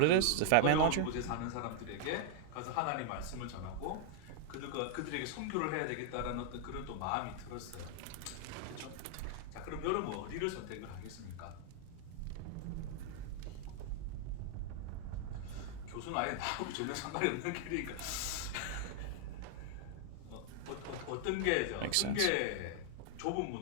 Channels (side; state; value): both; different; correlation 0.00